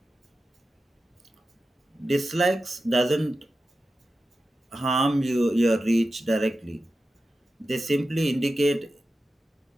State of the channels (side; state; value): both; normal; correlation 0.92